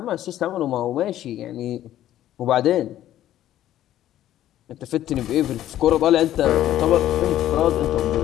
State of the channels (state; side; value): quieter; right; 12.7 dB